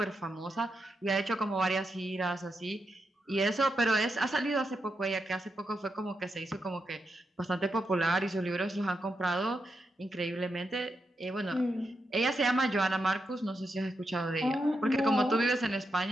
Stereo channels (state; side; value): normal; both; correlation 0.85